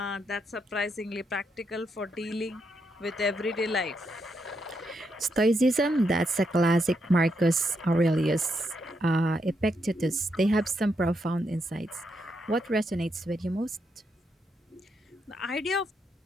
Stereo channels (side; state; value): both; normal; correlation 0.80